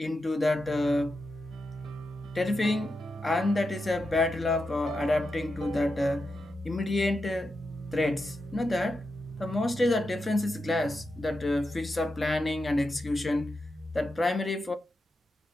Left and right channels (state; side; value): normal; both; correlation 0.87